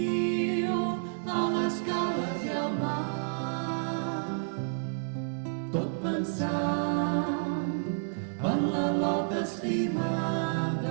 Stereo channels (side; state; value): left; silent; digital silence